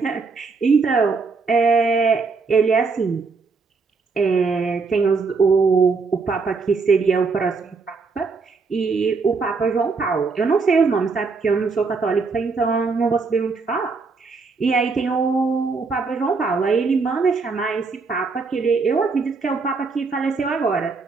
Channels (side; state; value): left; quieter; 4.5 dB